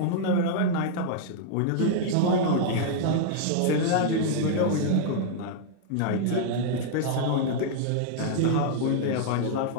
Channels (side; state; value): both; different; correlation -0.01